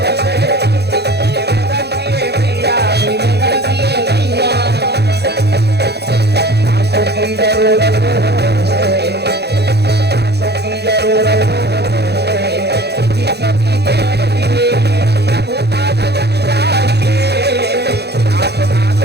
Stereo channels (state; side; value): late; left; 0.48 ms